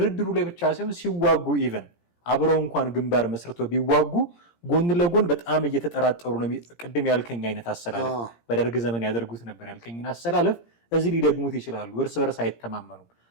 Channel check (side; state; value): right; late; 17 ms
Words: ላይ ብቻ ሳይሆን ሲዋጉ ኢቨን አብረው እንኳን ግንባር መስርቶ ቢዋጉ ጎን ለጎን በጣም እየተጠራጠሩ ነው። ቅድም ያልከኝ አይነት አሰላለፍ በደርግ ዘመን ያደርጉት ነበር ያልከኝን አሰላለፍ እዚህ ሊደግሙት ይችላሉ። እርስ በርስ አይተማመኑም፣